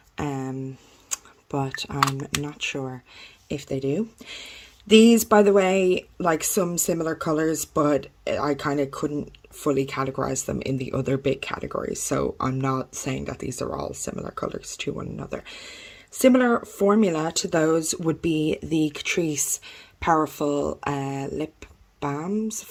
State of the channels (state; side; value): identical; both; correlation 1.00